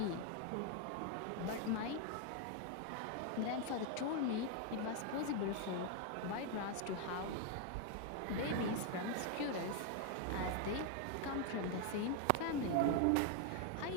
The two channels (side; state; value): both; different; correlation 0.01